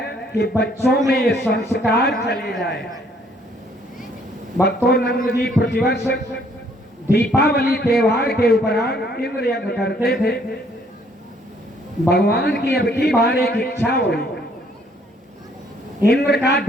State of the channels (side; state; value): both; normal; correlation 0.64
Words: कि बच्चों में ये संस्कार चले जाए। भक्तोनंद जी प्रतिवर्ष दीपावली त्योहार के उपरांत इंद्र यज्ञ करते थे। भगवान की अब की बार एक इच्छा हुई, इंद्र का